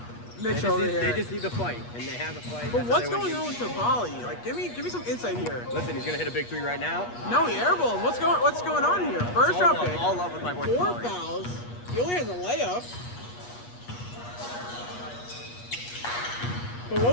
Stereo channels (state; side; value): late; right; 8.3 ms